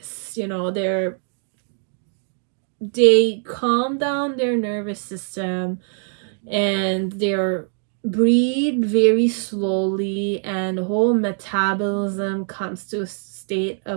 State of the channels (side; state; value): left; silent; 57 dB below the other